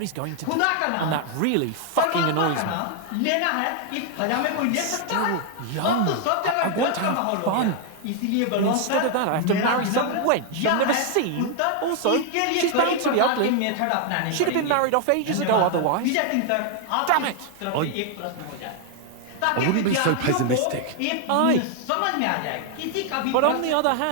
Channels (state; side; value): different; both; correlation 0.00